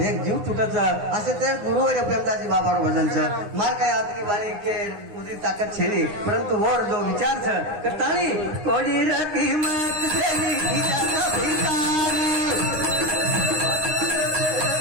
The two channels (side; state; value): left; late; 9.7 ms